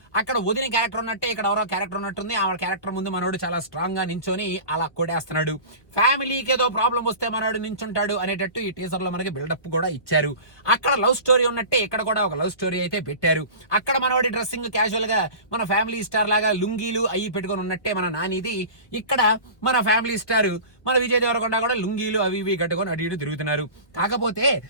అక్కడ వదిన క్యారెక్టర్ ఉన్నట్టే ఇక్కడ ఎవరో క్యారెక్టర్ ఉన్నట్టుంది. ఆ క్యారెక్టర్ ముందు మనోడు చాలా స్ట్రాంగ్ గా నించొని అలా కొడేస్తున్నాడు. ఫ్యామిలీకి ఏదో ప్రాబ్లం వస్తే మనోడు నించుంటాడు అనేటట్టు ఈ టీజర్ లో మనకి బిల్డప్ కూడా ఇచ్చారు. అక్కడ లవ్ స్టోరీ ఉన్నట్టే ఇక్కడ కూడా ఒక లవ్ స్టోరీ అయితే పెట్టారు. అక్కడ మనవాడి డ్రెస్సింగ్ క్యాజువల్ గా మన ఫ్యామిలీ స్టార్ లాగా లుంగీలు అయ్యి పెట్టుకొని ఉన్నట్టే మన నానిది. ఇక్కడ మన ఫ్యామిలీ స్టార్ మన విజయ్ దేవరకొండ కూడా లుంగీలు అవి ఇవి కట్టుకొని అటు ఇటు తిరుగుతున్నారు. కాకపోతే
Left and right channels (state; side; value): late; right; 1.4 ms